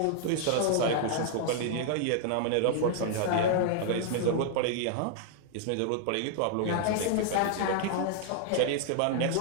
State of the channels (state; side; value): different; both; correlation 0.00